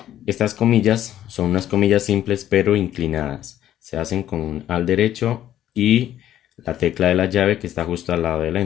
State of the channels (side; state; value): right; quieter; 11.8 dB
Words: Estas comillas son unas comillas simples pero inclinadas. Se hacen con al derecho y la tecla de la llave que está justo al lado del